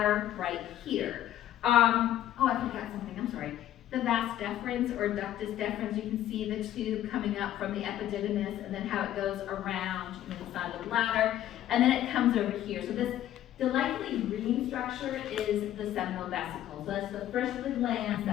right here. I forgot something, I'm sorry. The vas deferens or ductus deferens, you can see the tube coming up from the epididymis and then how it goes around inside the bladder. And then it comes over here. So this delightfully green structure is the seminal vesicle. So that's the first of the glands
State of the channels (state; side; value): quieter; right; 12.4 dB